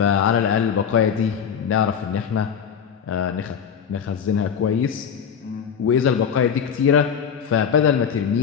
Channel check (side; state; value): right; quieter; 7.5 dB